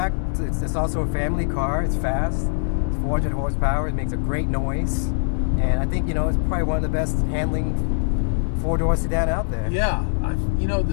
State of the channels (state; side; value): silent; right; digital silence